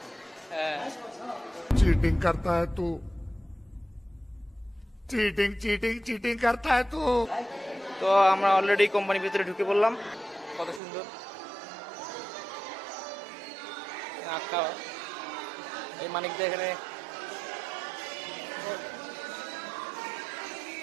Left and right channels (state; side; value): drops out; left; at 10.8 s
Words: चीटिंग करता है तू, चीटिंग चीटिंग चीटिंग करता है तू। তো আমরা অলরেডি কোম্পানির ভিতরে ঢুকে পড়লাম। কত সুন্দর আঁকা এই মানিকদা এখানে